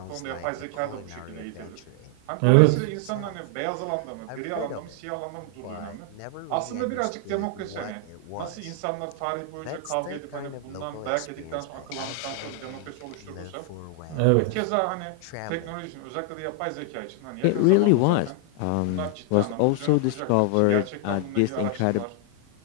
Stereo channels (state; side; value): different; both; correlation 0.00